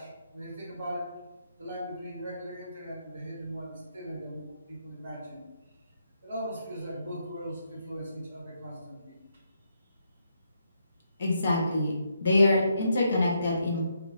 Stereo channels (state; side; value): inverted; both; correlation -0.78